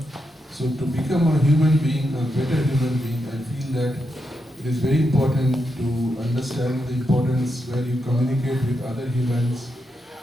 So to become a human being, a better human being, I feel that it is very important to understand the importance where you communicate with other humans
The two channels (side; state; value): both; normal; correlation 0.85